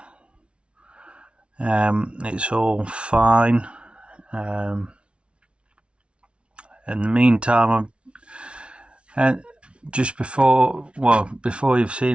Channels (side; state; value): left; late; 0.059 ms